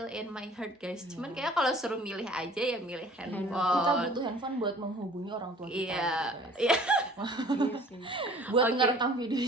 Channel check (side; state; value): both; normal; correlation 0.50